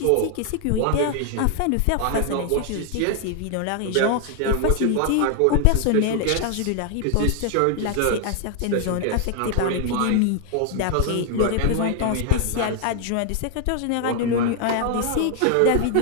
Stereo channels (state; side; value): different; both; correlation 0.00